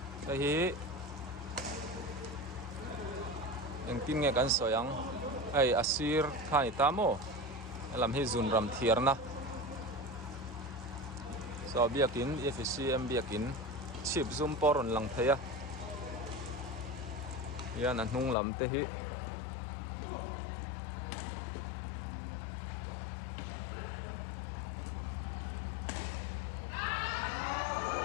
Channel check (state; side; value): drops out; right; at 18.4 s